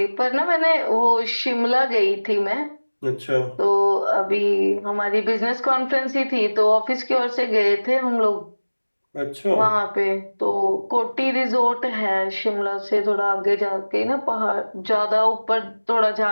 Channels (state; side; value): inverted; both; correlation -1.00